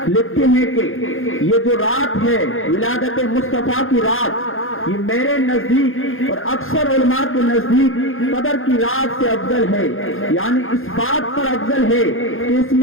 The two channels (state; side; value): late; right; 0.59 ms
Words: لکھتے ہیں کہ یہ جو رات ہے ولادت مصطفیٰ کی رات، یہ میرے نزدیک اور اکثر علماء کے نزدیک قدر کی رات سے افضل ہے. یعنی اس بات پر افضل ہے کہ اس